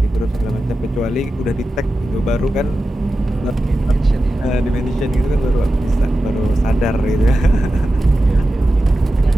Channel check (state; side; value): normal; both; correlation 0.92